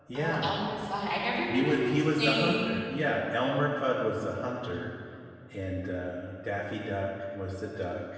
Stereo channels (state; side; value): identical; both; correlation 1.00